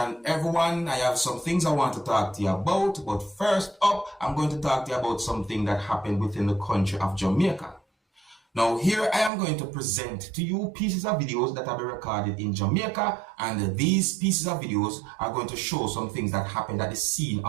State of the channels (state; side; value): drops out; left; at 9.3 s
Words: everyone. I have some things I want to talk to you about, but first up, I'm going to talk to you about something that happened within the country of Jamaica. Now, here I am going to present to you pieces of videos that have been recorded in Jamaica, and these pieces of videos are going to show some things that happened at the scene